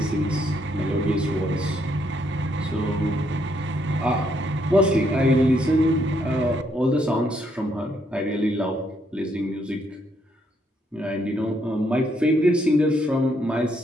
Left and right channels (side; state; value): both; normal; correlation 0.73